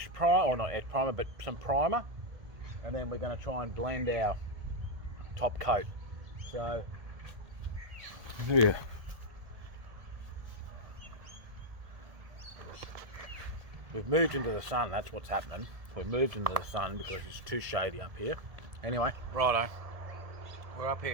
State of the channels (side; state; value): left; late; 1.7 ms